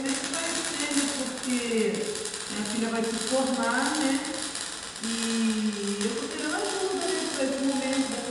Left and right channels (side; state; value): both; identical; correlation 1.00